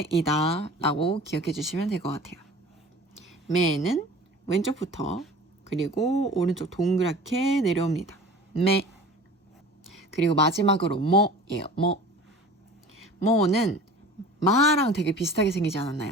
라고 기억해 주시면 될 것 같아요. 매는 왼쪽부터 그리고 오른쪽 동그랗게 내려옵니다. 매. 그리고 마지막으로 뭐예요. 뭐는 마랑 되게 비슷하게 생기지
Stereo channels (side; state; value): both; normal; correlation 0.41